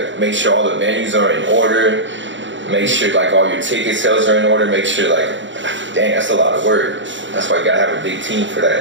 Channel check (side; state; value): left; late; 0.54 ms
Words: make sure all the venues are in order, make sure like all your ticket sales are in order, make sure like. Dang, that's a lot of work. That's why you gotta have a big team for